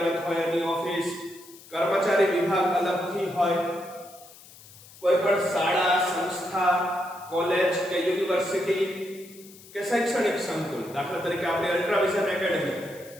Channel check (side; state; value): left; noise; hiss, 21 dB below the sound